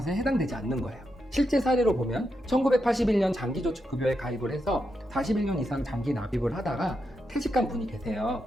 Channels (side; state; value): both; normal; correlation 0.85